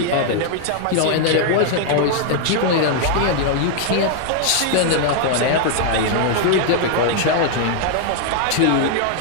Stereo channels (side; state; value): both; different; correlation 0.00